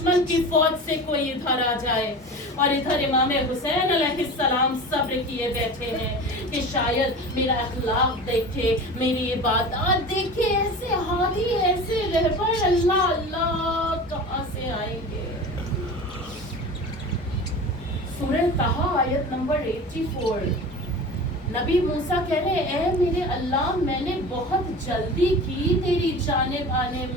کی فوج سے کوئی ادھر آ جائے. اور ادھر امام حسین علیہ السلام صبر کیے بیٹھے ہیں کہ شاید میرا اخلاق دیکھے، میری عبادات دیکھے، ایسے حالی، ایسے رہبر اللہ اللہ کہاں سے آئیں گے. سورہ طٰہٰ آیت نمبر 84. نبی موسیٰ کہہ رہے اے میرے اللہ، میں نے بہت جلدی کی تیری جانب آنے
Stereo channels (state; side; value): normal; both; correlation 0.34